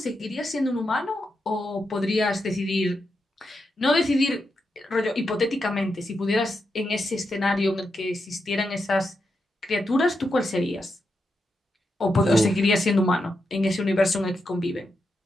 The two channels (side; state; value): both; normal; correlation 0.85